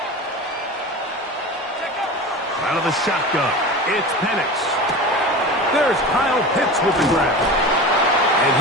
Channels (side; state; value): both; normal; correlation 0.31